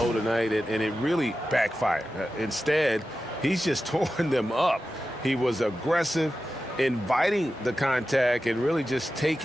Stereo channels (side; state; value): both; normal; correlation 0.93